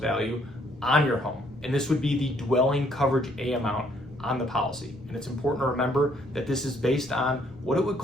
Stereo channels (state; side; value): noise; left; rumble, 22 dB below the sound